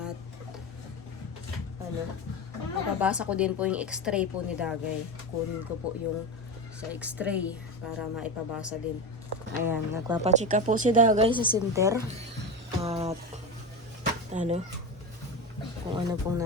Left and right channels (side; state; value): both; normal; correlation 0.20